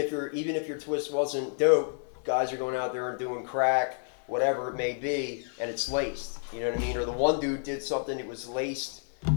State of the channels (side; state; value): right; silent; 58 dB below the other